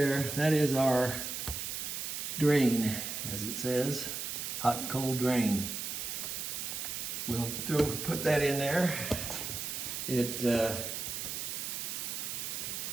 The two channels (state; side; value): noise; right; hiss, 4 dB below the sound